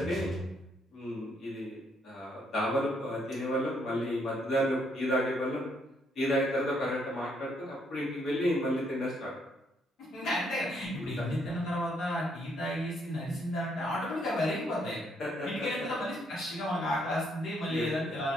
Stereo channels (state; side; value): normal; both; correlation 0.72